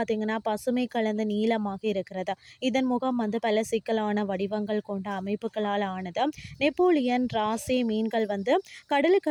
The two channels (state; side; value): identical; both; correlation 1.00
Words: பசுமை கலந்த நீளமாக இருக்கிறது. இதன் முகம் பல சிக்கலான வடிவங்கள் கொண்ட அமைப்புகளால் ஆனது. நெப்போலியன், ராசே மீன்கள்